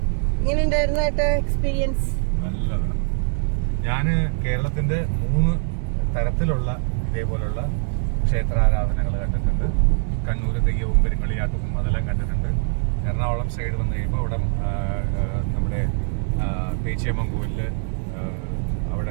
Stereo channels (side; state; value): left; silent; 62 dB below the other